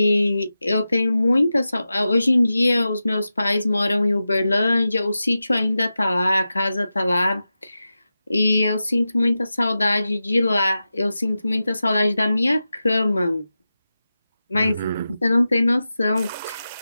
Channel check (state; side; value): inverted; both; correlation -0.93